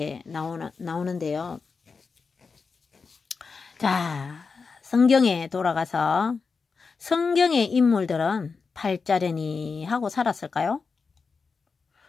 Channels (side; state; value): right; quieter; 4.9 dB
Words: 나오는데요. 자, 성경에 돌아가서 성경의 인물들은 팔자려니 하고 살았을까요?